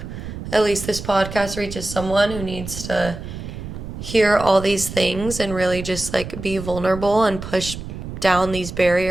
at least this podcast reaches someone who needs to hear all these things and really just like be vulnerable and push down these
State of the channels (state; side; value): noise; right; rumble, 9 dB below the sound